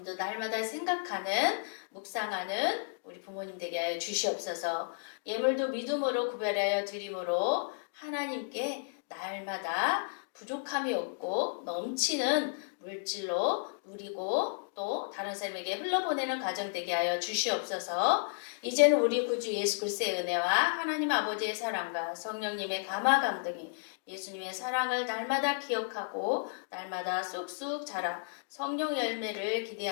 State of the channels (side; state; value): right; silent; digital silence